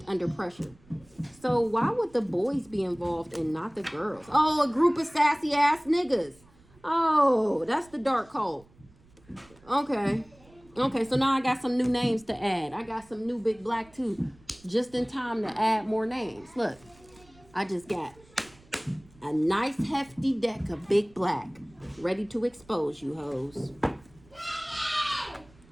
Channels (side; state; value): right; noise; rumble, 27 dB below the sound